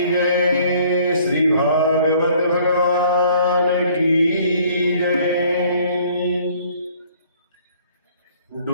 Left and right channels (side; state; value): both; inverted; correlation -0.58